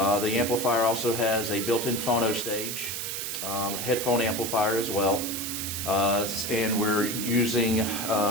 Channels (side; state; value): right; noise; hiss, 4 dB below the sound